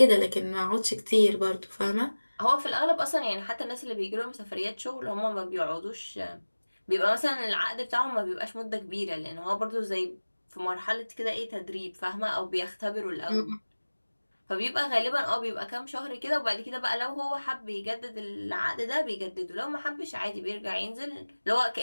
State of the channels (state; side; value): inverted; both; correlation -1.00